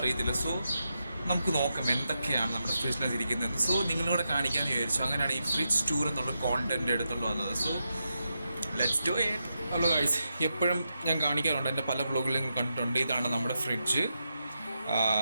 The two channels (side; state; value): both; inverted; correlation -0.86